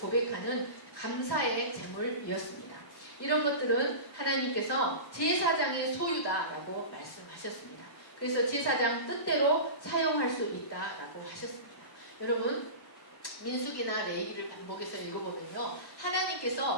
감사의 제물이었습니다. 이런 것들은 하나님께서 제사장의 소유다라고 말씀하셨습니다. 그래서 제사장 뜻대로 사용할 수 있다라고 하셨습니다. 여러분, 민수기나 레위기를 반복해서 읽어보면요,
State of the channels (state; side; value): late; right; 1.1 ms